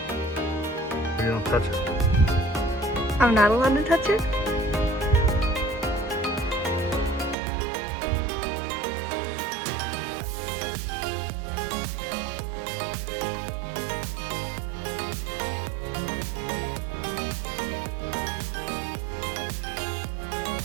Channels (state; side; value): drops out; left; at 7.4 s